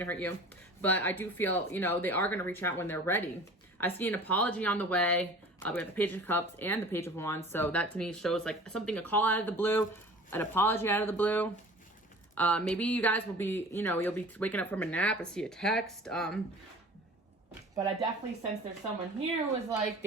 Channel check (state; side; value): normal; both; correlation 0.43